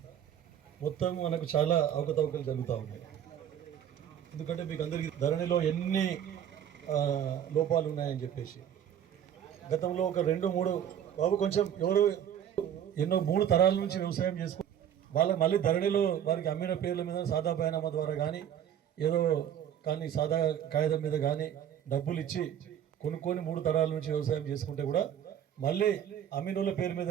మొత్తం మనకు చాలా అవకతవకలు జరుగుతూ ఉన్నాయి. ఎందుకంటే మీకు అందరికీ ధరణిలో ఎన్ని లోపాలు ఉన్నాయని చెప్పేసి గతంలో ఒక 2-3 బాబు కొంచెం ఎవరు ఎన్నో 3 తరాల నుంచి వ్యవసాయం చేసుకు వాళ్ళకి మళ్ళీ ధరణిలో వారికి అమ్మిన పేర్ల మీద సాదా బైనామా ద్వారా కానీ ఏదో కానీ సాదా కాగితం మీద కానీ డబ్బులు ఇచ్చి కొనుక్కొని 3 తరాల నుంచి వ్యవసాయం చేసుకుంటే కూడా మళ్ళీ అమ్మినోళ్ళ పేరు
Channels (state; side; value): quieter; left; 9.7 dB